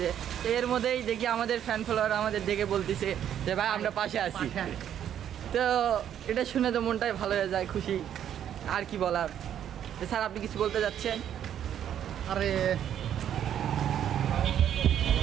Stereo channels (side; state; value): left; quieter; 10.0 dB